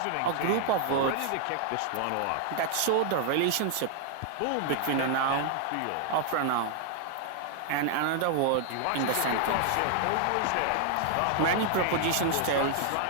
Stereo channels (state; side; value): different; both; correlation 0.00